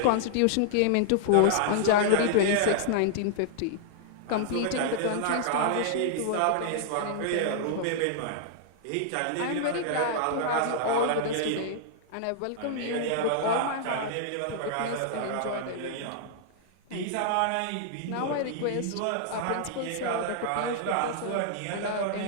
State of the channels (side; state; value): both; different; correlation -0.01